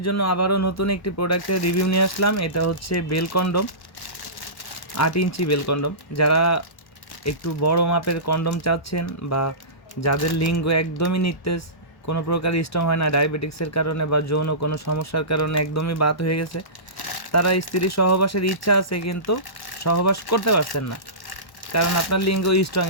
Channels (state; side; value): late; right; 1.1 ms